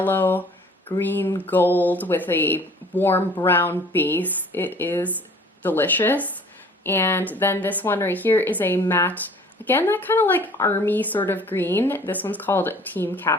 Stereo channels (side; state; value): both; normal; correlation 0.51